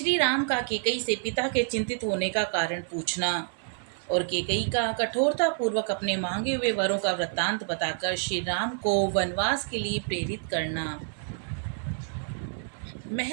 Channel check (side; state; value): left; silent; 56 dB below the other